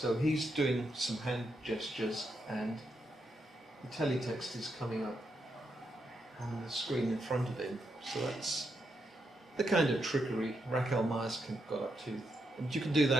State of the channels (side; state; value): both; normal; correlation 0.82